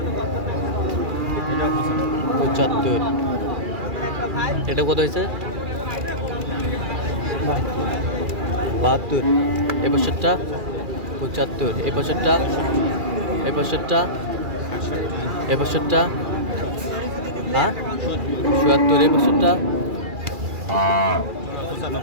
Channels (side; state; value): left; late; 2.4 ms